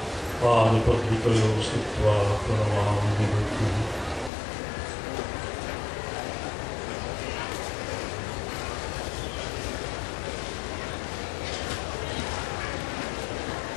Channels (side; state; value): right; drops out; at 4.3 s